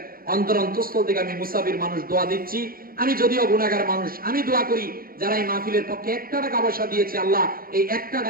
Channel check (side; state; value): left; late; 0.42 ms